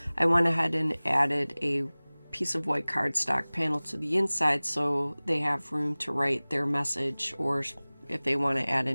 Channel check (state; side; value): inverted; both; correlation -1.00